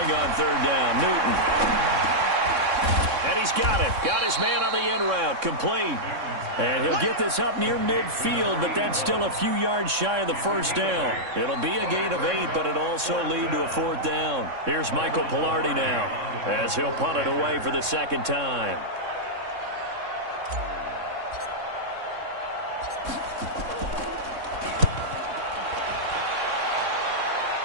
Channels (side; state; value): left; late; 3.6 ms